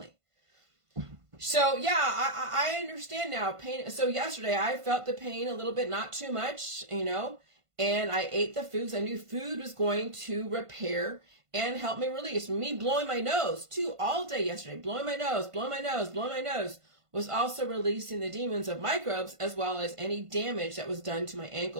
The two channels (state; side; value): late; left; 1.5 ms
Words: So yeah, I understand now pain. So yesterday I felt the pain a little bit, not too much, and I ate the foods. I knew food was going to repair and help me release. Me blowing my nose too all day yesterday, blowing my nose was also releasing the demons of microbes, as well as any damage that was done to my